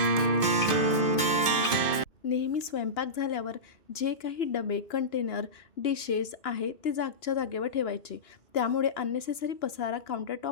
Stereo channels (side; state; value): right; late; 2.5 ms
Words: नेहमी स्वयंपाक झाल्यावर जे काही डबे, कंटेनर, डिशेस आहे ते जागच्या जागेवर ठेवायचे. त्यामुळे अननेसेसरी पसारा